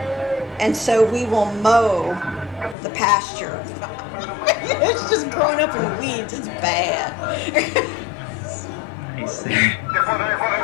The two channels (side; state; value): right; drops out; at 2.8 s